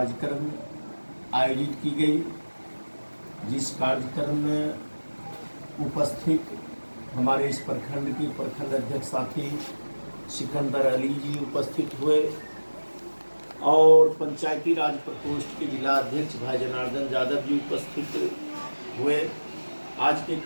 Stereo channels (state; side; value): inverted; both; correlation -1.00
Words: आयोजित की गई, जिस कार्यक्रम में उपस्थित हमारे इस प्रखंड के प्रखंड अध्यक्ष साथी सिकंदर अली जी उपस्थित हुए और पंचायती राज प्रकोष्ठ के जिला अध्यक्ष भाई जनार्दन यादव जी उपस्थित हुए। आज के